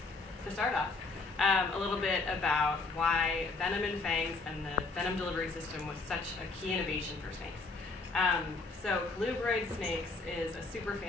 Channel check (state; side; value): quieter; right; 3.8 dB